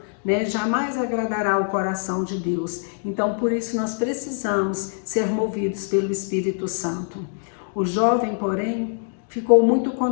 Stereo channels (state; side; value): silent; right; digital silence